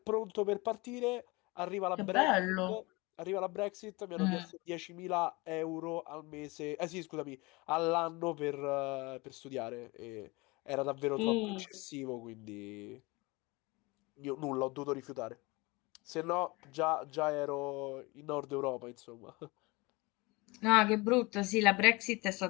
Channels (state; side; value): quieter; right; 24.6 dB